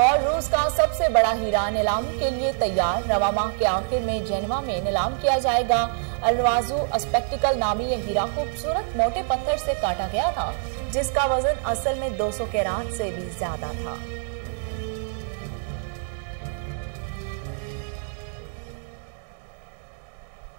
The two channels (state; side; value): silent; left; 61 dB below the other